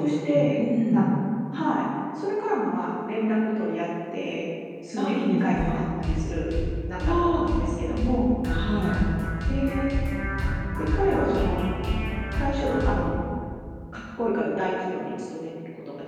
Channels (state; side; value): identical; both; correlation 1.00